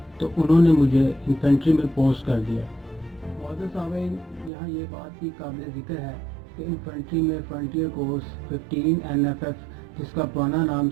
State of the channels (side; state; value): left; drops out; at 4.5 s